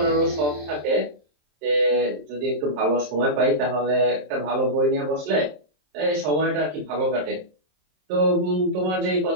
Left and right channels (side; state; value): left; late; 27 ms